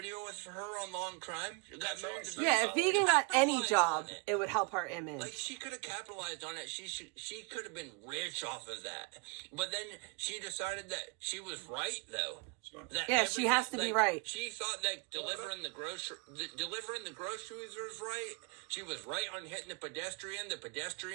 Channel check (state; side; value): quieter; left; 29.8 dB